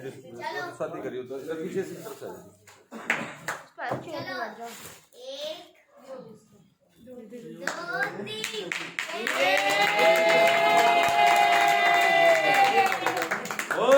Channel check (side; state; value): both; identical; correlation 1.00